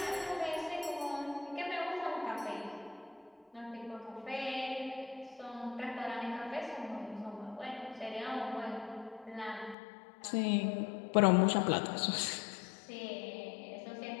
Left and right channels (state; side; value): drops out; right; at 9.8 s